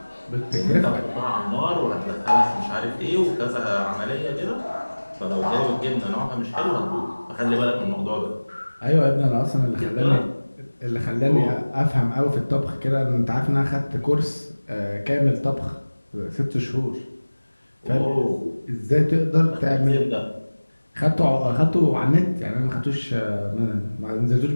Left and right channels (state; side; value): inverted; both; correlation -1.00